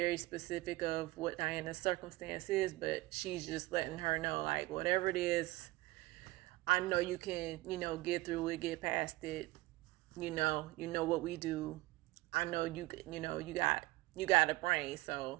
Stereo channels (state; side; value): quieter; left; 20.2 dB